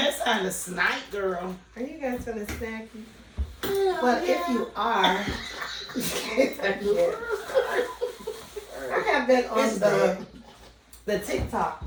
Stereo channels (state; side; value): identical; both; correlation 1.00